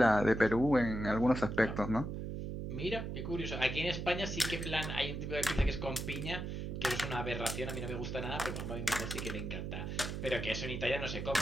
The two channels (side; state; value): right; noise; hum, 5 dB below the sound